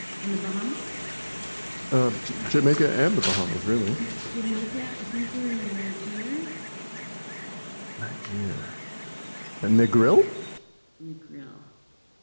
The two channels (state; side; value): inverted; both; correlation -1.00